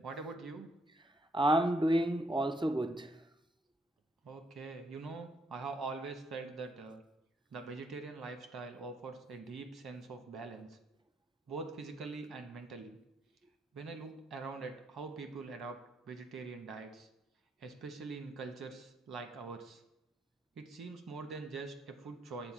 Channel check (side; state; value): both; normal; correlation 0.75